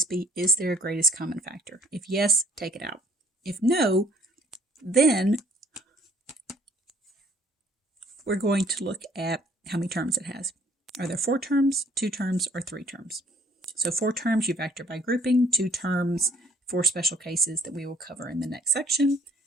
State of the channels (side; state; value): both; normal; correlation 0.58